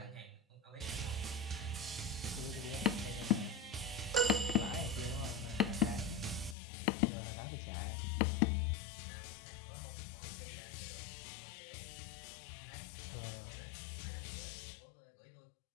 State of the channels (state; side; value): drops out; right; at 6.6 s